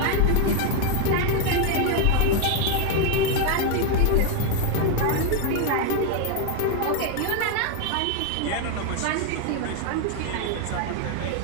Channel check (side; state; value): both; different; correlation 0.02